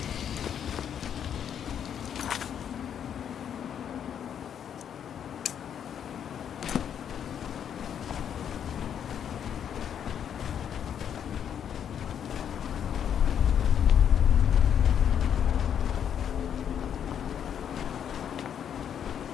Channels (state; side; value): quieter; right; 8.7 dB